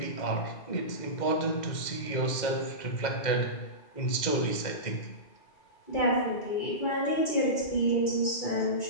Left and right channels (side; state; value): right; late; 2.1 ms